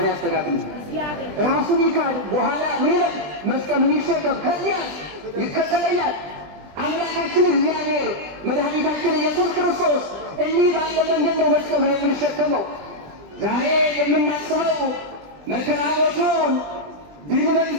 ያስተካክልልን? ራሱን ይካድ፣ በኋላ ምን ይላል? መስቀሉን ይሸከም፣ ከዚያ ይከተለኛል። አምላካችን እግዚአብሔር መድኃኒታችን ኢየሱስ ክርስቶስ እንዲህ ባለ መንገድ ነው መስቀሉን የምንሸከመው። ዛሬ የምናስበው መከራ ሞቱን፣ ድል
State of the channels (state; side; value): late; left; 20 ms